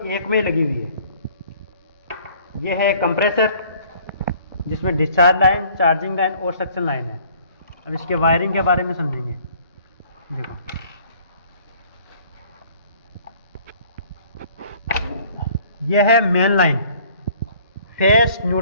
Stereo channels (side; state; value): both; inverted; correlation -0.55